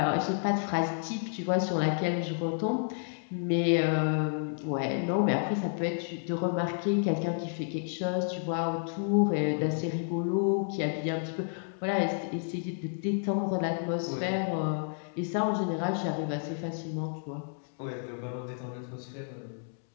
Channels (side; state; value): right; silent; digital silence